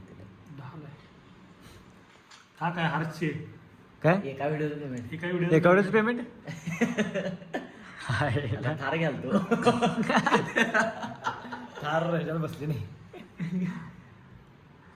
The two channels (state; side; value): identical; both; correlation 1.00